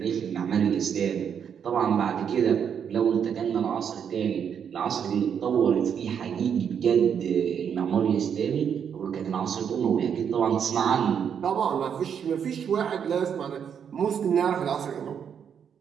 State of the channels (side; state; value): left; quieter; 7.8 dB